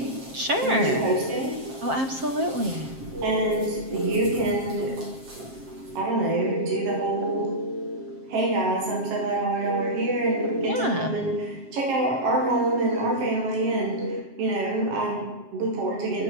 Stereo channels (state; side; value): late; left; 7.5 ms